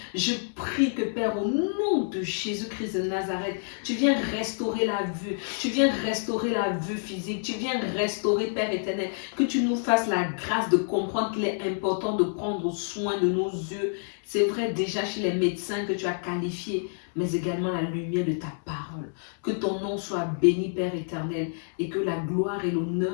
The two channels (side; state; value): right; silent; digital silence